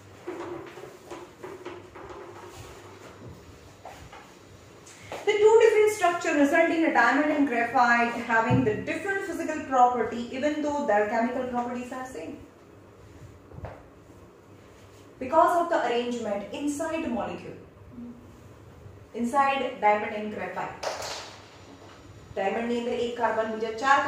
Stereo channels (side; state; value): both; identical; correlation 1.00